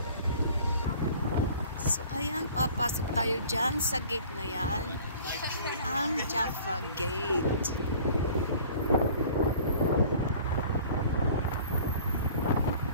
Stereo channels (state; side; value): inverted; both; correlation -0.48